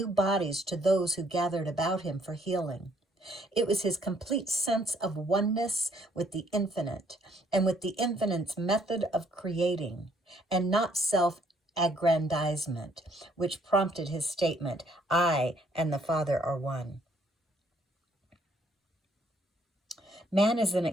bodies to those who gathered about him for healing. It was his complete sense of oneness with the infinite and with the infinite's method of creating, and not self-aggrandizement, which prompted his statement, "I and the Father are one." Man is an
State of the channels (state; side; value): normal; both; correlation 0.66